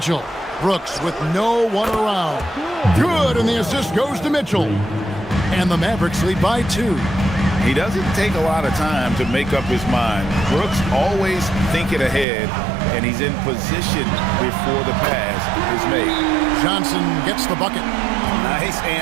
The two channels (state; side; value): drops out; left; at 12.2 s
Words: Brooks with no one around. Good, and the assist goes to Mitchell. And the Mavericks lead by 2. He doesn't take a lot of time to make up his mind. Brooks always thinking ahead, and he's in position before the pass is made. Johnson gets the bucket. Nice